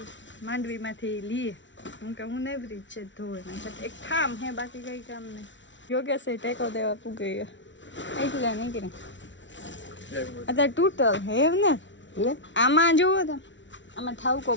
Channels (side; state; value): right; late; 0.55 ms